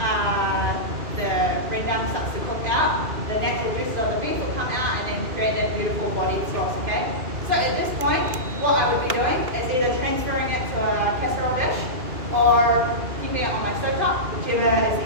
the rendang starts to cook out, the natural juices of the beef will come out and then create that beautiful bodied sauce, okay? So at this point, what I would be doing is either transferring it to a casserole dish or keeping it on my stovetop, whichever is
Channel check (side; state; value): left; late; 2.5 ms